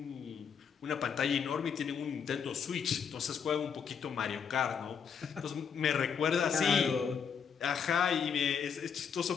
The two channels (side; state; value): right; quieter; 6.9 dB